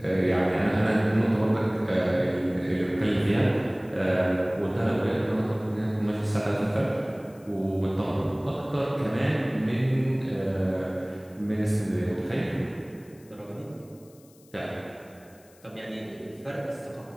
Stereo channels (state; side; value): noise; left; hiss, 28 dB below the sound